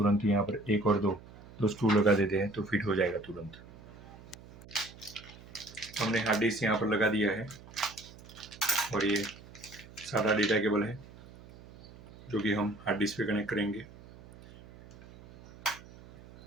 यहाँ पर 1 और 2 स्क्रू लगा देते हैं तो फिट हो जाएगा तुरंत। हमने हार्ड डिस्क यहाँ पर लगा दिया है और ये सादा डेटा केबल है जो कि हम हार्ड डिस्क पे कनेक्ट करेंगे।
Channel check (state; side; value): noise; right; hum, 19 dB below the sound